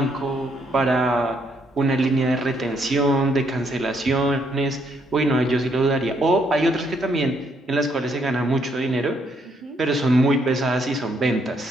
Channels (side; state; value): both; normal; correlation 0.72